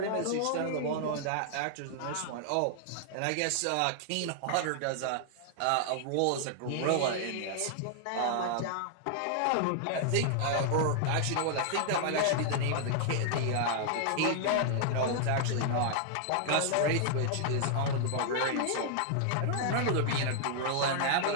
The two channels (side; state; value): both; different; correlation -0.01